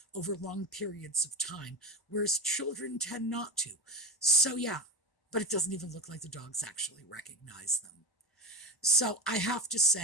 over long periods of time, whereas children tend not to. So, yeah. But it doesn't even look like the dogs actually recognize them. So I have to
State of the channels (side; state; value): right; late; 1.0 ms